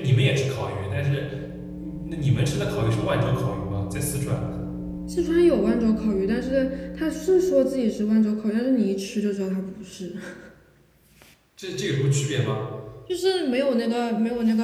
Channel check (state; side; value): identical; both; correlation 1.00